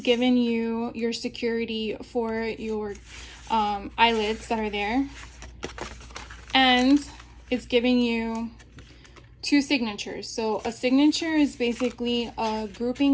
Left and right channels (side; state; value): both; identical; correlation 1.00